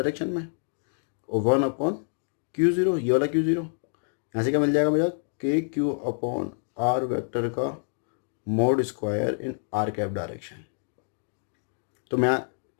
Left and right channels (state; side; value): silent; right; 60 dB below the other